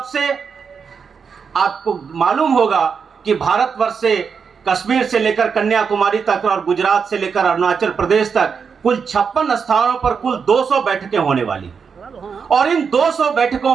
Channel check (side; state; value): left; quieter; 6.1 dB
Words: से आपको मालूम होगा कि भारतवर्ष से कश्मीर से लेकर कन्याकुमारी तक और गुजरात से लेकर अरुणाचल प्रदेश तक कुल 56 स्थानों पर कुल 200 बैठकें होने वाली, और इन 200 बैठकों